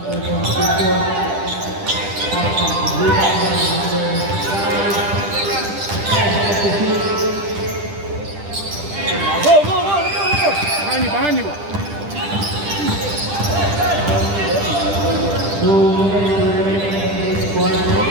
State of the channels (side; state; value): left; late; 10 ms